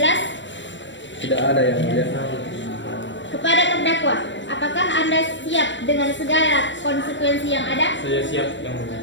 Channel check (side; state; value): right; late; 0.53 ms